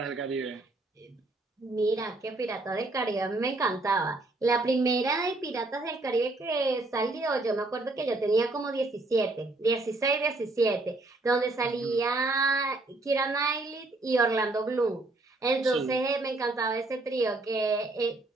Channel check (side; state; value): left; quieter; 3.0 dB